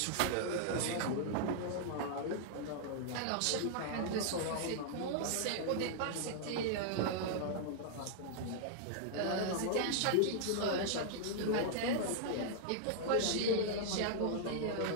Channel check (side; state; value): both; different; correlation -0.01